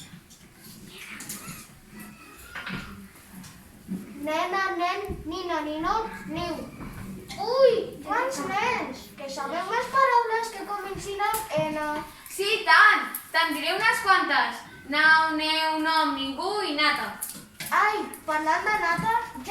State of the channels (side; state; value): both; identical; correlation 1.00